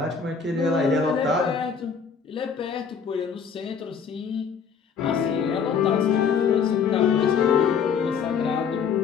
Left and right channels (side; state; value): right; quieter; 6.4 dB